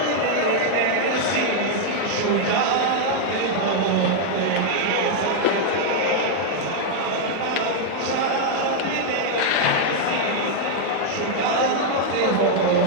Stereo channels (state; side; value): different; both; correlation 0.00